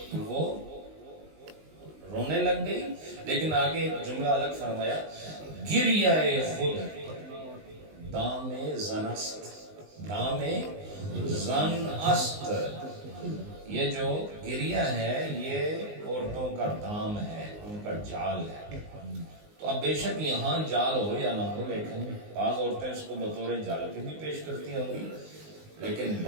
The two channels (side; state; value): left; late; 19 ms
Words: وہ رونے لگ گئی، لیکن آگے جملہ الگ فرمایا، گریہ خود دام زن است، دام زن است، یہ جو گریہ ہے یہ عورتوں کا دام ہے، ان کا جال ہے۔ تو اب بے شک یہاں جال ہو یا نہ ہو، لیکن بعض عورتیں اس کو بطور جال کے بھی پیش کرتی ہوں گی، لیکن